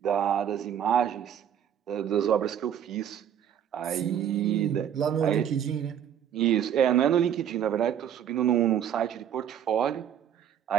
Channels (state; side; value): quieter; left; 9.4 dB